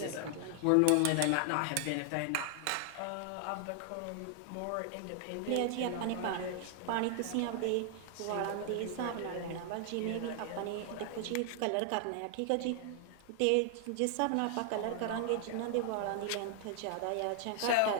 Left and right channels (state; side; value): different; both; correlation 0.00